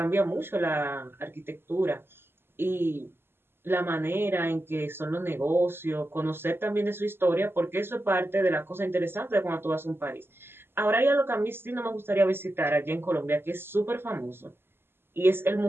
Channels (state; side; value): late; left; 0.11 ms